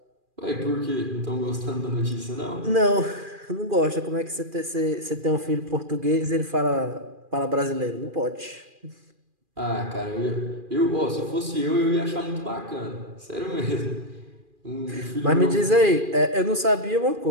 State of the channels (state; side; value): late; left; 2.4 ms